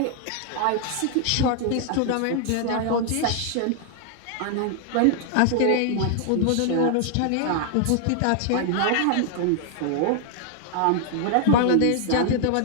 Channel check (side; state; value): both; different; correlation 0.00